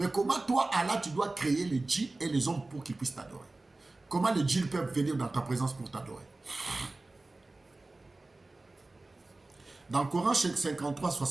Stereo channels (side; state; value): left; quieter; 3.1 dB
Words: comment toi, Allah, tu dois créer les djinns et les hommes pour qu'ils puissent t'adorer? Comment les djinns peuvent venir dans ta présence pour t'adorer? Dans le Coran 53,